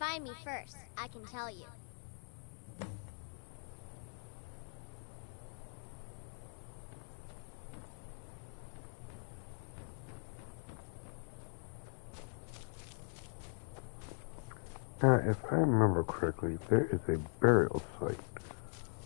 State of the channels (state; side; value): silent; right; 51 dB below the other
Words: me first, I can tell you. Now, if I remember correctly, there is a burial site